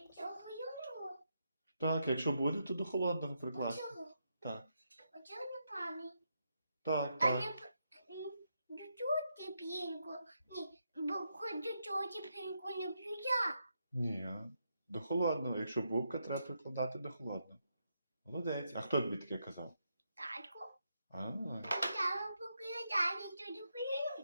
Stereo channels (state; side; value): inverted; both; correlation -0.82